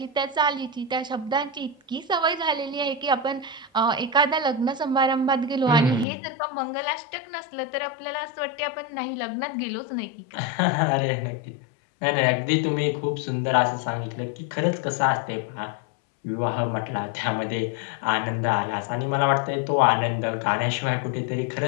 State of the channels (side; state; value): right; drops out; at 6.1 s